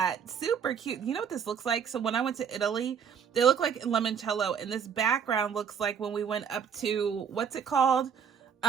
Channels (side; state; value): left; quieter; 7.3 dB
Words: Super cute. You know what this looks like? So when I went to Italy, they look like limoncello, and this background looks like when we went up to, what's it called?